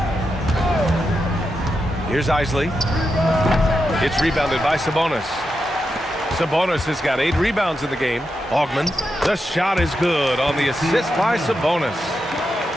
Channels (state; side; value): normal; both; correlation 0.87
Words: Here's Isley. It's rebounded by Sabonis. Sabonis has got 8 rebounds in the game. Augman, the shot is good on the assist by Sabonis.